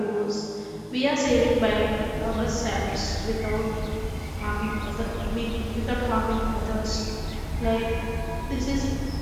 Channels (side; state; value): both; identical; correlation 1.00